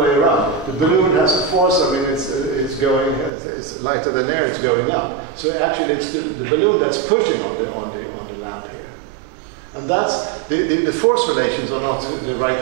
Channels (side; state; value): left; drops out; at 3.3 s